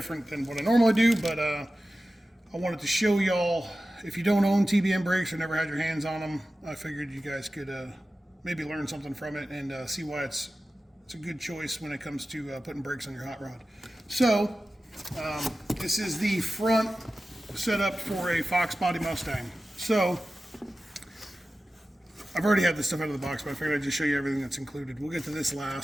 than what I normally do, but I wanted to show y'all, if you don't own TBM brakes or never had your hands on them, I figured you guys could maybe learn something from it and see why it's a good choice when it comes to putting brakes on your hot rod. So this is the front setup for a Fox Body Mustang. So I've already had this stuff out of the box, but I figured I'd just show you everything that's included. We'll get to this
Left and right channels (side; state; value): both; normal; correlation 0.94